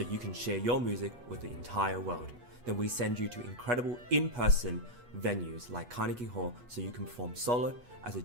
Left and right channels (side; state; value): left; late; 8.2 ms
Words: you can share your music with the entire world. Then we send you to incredible in-person venues like Carnegie Hall so you can perform solo, as a